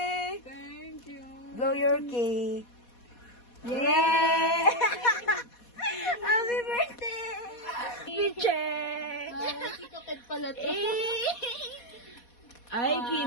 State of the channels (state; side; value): late; right; 4.2 ms